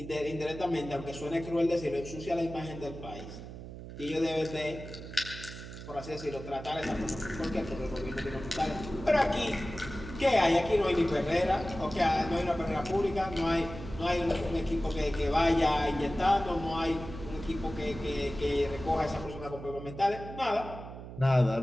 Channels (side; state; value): right; noise; hum, 12 dB below the sound